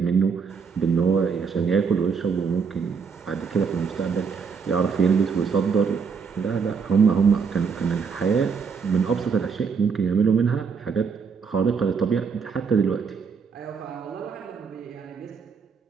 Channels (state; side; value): quieter; left; 5.8 dB